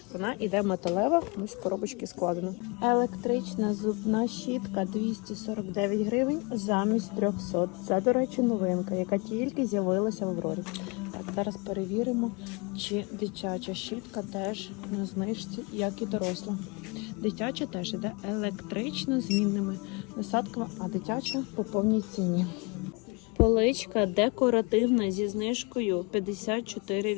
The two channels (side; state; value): right; quieter; 29.8 dB